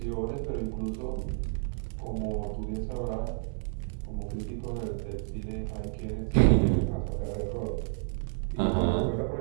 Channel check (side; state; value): left; silent; 57 dB below the other